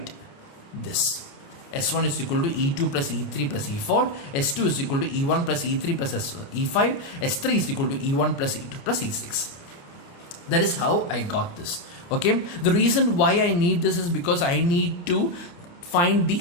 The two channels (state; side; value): late; right; 29 ms